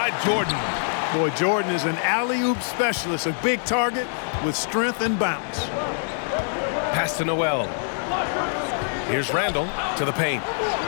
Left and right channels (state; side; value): silent; right; digital silence